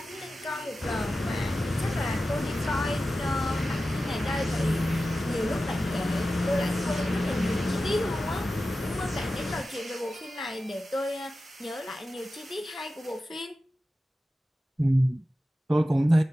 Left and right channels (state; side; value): normal; both; correlation 0.93